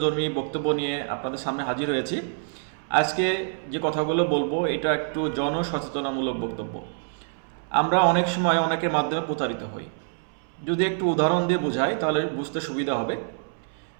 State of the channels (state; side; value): silent; left; 61 dB below the other